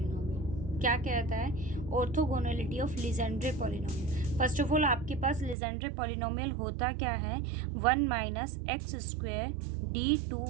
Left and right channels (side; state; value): left; drops out; at 5.6 s